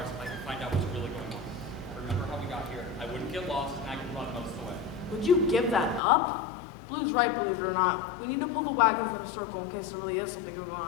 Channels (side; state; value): right; drops out; at 6.0 s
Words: I can find out what's really going on. I remember how we got here. I wouldn't get lost, and I could run most of the way. Would you give that up? Blue's right, believe it or not. We need to pull the wagons in a circle in case there really is something going